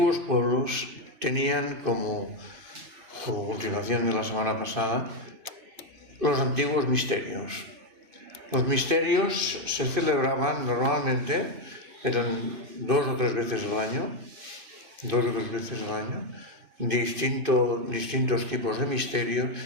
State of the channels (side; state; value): left; late; 2.5 ms